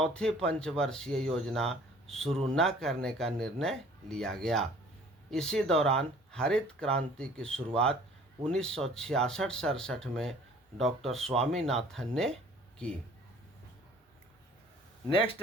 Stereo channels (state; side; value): normal; both; correlation 0.52